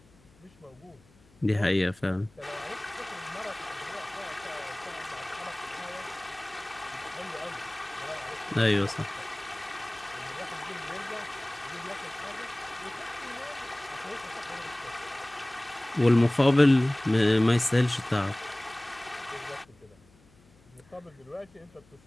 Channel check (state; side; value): noise; left; hum, 29 dB below the sound